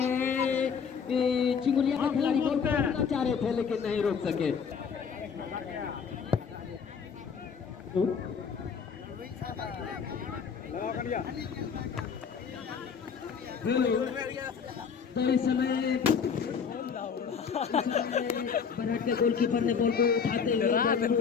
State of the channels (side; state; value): right; quieter; 6.4 dB